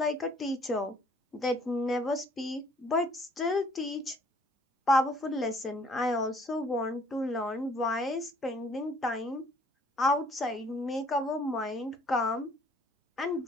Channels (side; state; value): both; normal; correlation 0.60